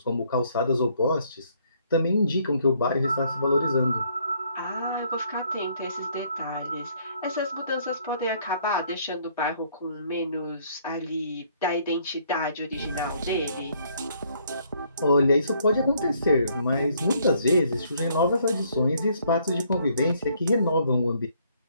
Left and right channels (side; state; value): both; inverted; correlation -0.66